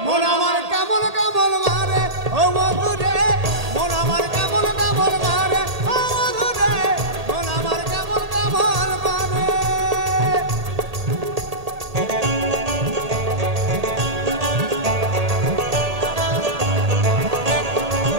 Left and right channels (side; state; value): left; late; 1.8 ms